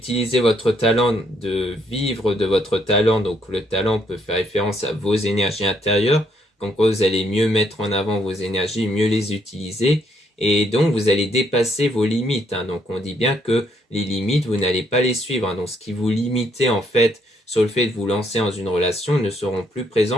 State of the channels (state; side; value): normal; both; correlation 0.71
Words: votre talent, de vivre de votre talent. Donc, le talent peut faire référence à vos énergies intérieures. Donc, vous allez mieux mettre en avant vos énergies, mieux les utiliser. Et donc, vous allez dépasser vos limites. Donc, on dit bien que les limites, vous n'allez pas les suivre. Donc, ce qui vous limitait, en fait, sur le fait de vous lancer dans une relation ne seront plus